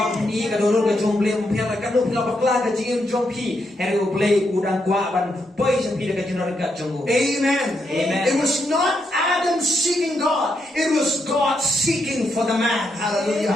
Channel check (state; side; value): normal; both; correlation 0.80